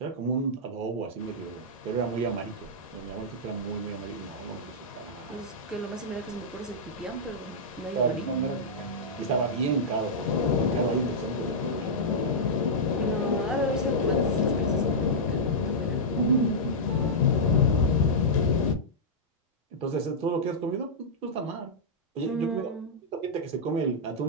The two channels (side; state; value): both; normal; correlation -0.11